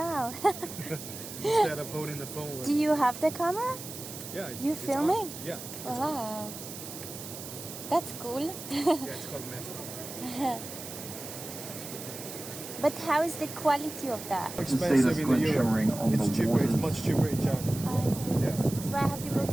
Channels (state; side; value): noise; right; hiss, 11 dB below the sound